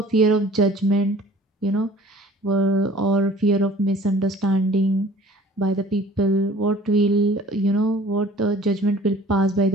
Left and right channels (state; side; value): normal; both; correlation 0.49